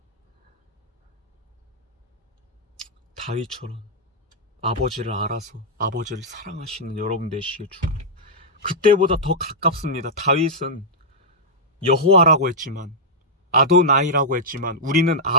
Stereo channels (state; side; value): normal; both; correlation -0.08